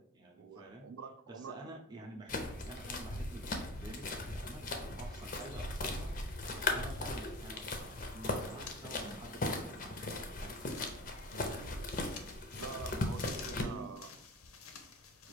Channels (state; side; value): normal; both; correlation 0.34